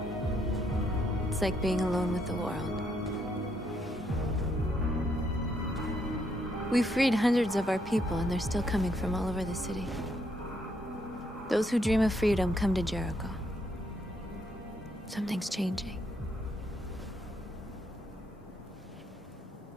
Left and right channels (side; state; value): both; normal; correlation 0.75